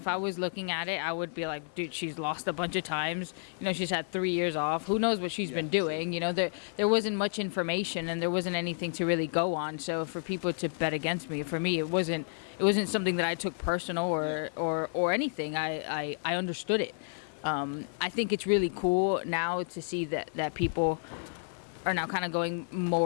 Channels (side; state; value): right; silent; 57 dB below the other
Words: I was looking at it, I would be like, dude, she's lost a bunch of times. She's had 3 years off. Who knows what she's been doing? There wasn't much information, and there wasn't anything to really go on. So for people to bet against me, for me, it wasn't something that I took personal or anything. I understood it. I think it's really cool now to see that people are now kind of going